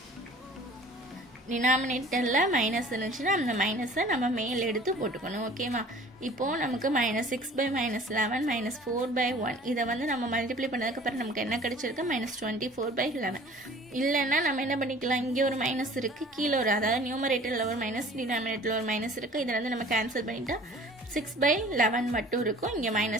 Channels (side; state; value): both; normal; correlation 0.48